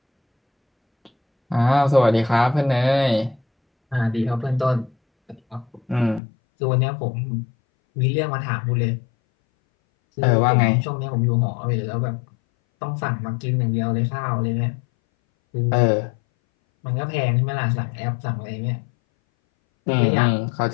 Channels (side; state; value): right; drops out; at 6.2 s